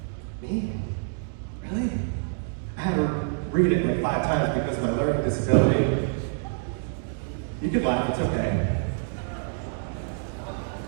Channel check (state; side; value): silent; left; digital silence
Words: Me? Really? I had to read it like 5 times because of my learning disability. You can laugh, it's okay.